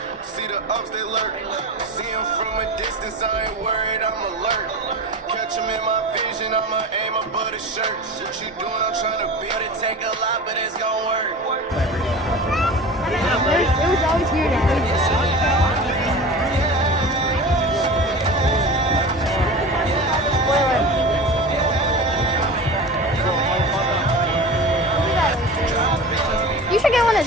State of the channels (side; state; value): both; normal; correlation 0.33